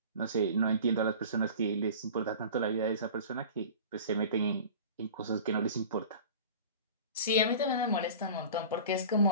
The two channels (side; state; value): both; inverted; correlation -0.38